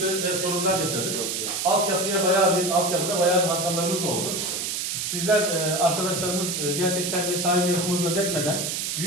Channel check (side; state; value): right; noise; hiss, 2 dB below the sound